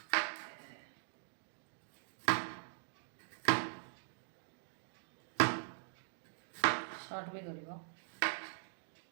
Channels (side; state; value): left; silent; digital silence